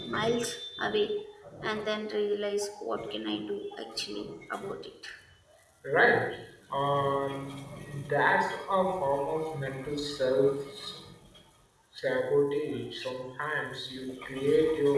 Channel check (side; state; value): both; identical; correlation 1.00